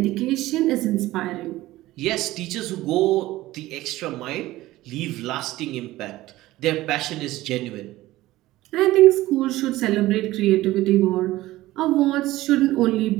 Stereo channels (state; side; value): quieter; left; 16.9 dB